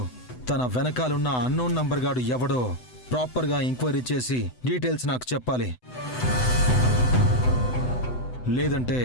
తన వెనకాలన్న అన్నోన్ నంబర్ గాడు ఎవడో ప్రాపర్గా ఎంక్వైరీ చేసి డీటెయిల్స్ నాకు చెప్పాలి. లేదంటే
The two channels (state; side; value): late; right; 8.0 ms